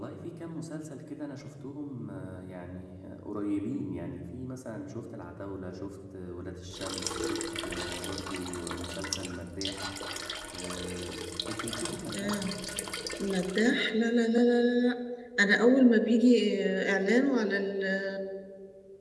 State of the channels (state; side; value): identical; both; correlation 1.00